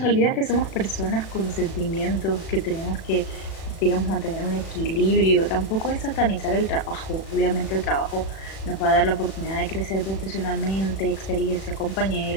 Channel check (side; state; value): right; late; 36 ms